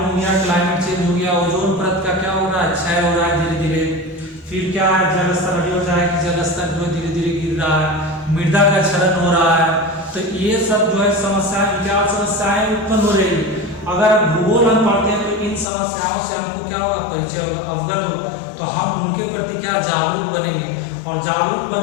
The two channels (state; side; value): drops out; right; at 15.7 s